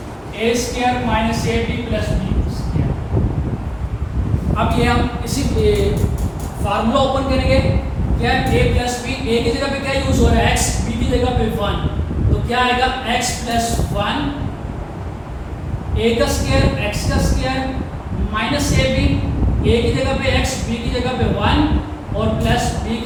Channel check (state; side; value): identical; both; correlation 1.00